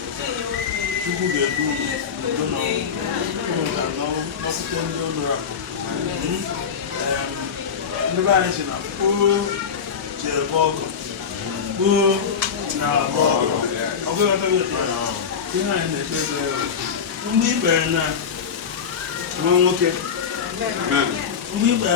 Chukwu ga-edu udo n'ọpụta ndị ụlọ ndị be anyị si na kpoo ji ebe ọgọ kpoo na abụ ọgọ ọgụghọtaghị ihe anyị na-ekpe ekpere mgbe ikpere na nwa nwoke mgbe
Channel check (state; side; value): quieter; right; 6.7 dB